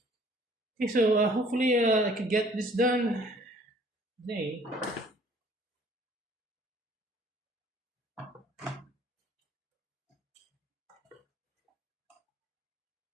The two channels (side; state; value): both; normal; correlation 0.56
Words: Okay, so hopefully I can get this done today.